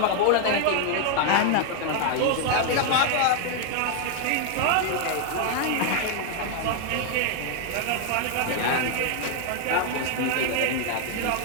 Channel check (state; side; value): different; both; correlation 0.00